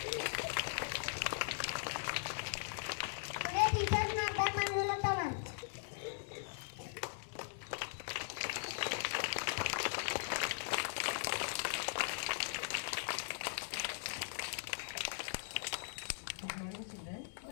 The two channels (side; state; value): right; silent; 51 dB below the other